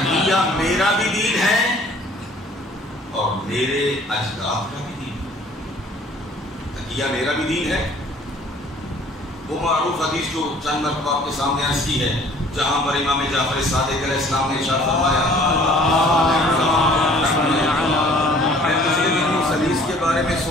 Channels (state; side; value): normal; both; correlation 0.54